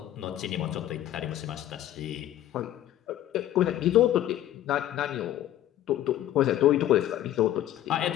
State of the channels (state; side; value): quieter; right; 12.7 dB